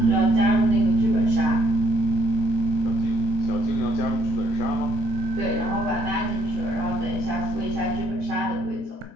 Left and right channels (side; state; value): both; normal; correlation 0.69